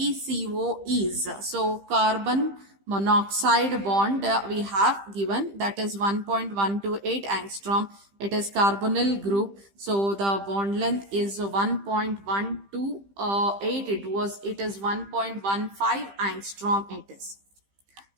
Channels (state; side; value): late; left; 15 ms